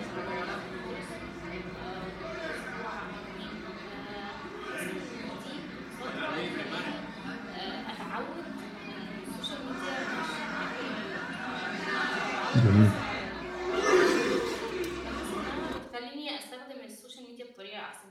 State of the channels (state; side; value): identical; both; correlation 1.00